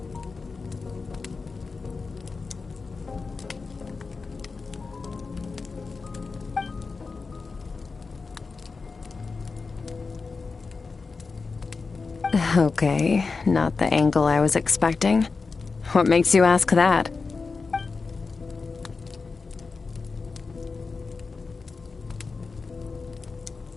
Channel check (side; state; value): right; quieter; 4.4 dB